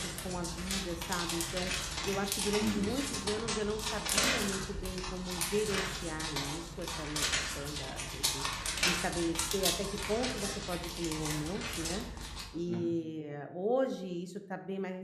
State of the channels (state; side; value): identical; both; correlation 1.00